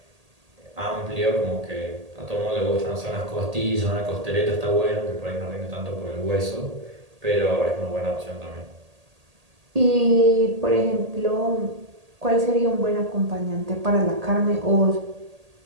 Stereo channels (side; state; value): left; late; 1.8 ms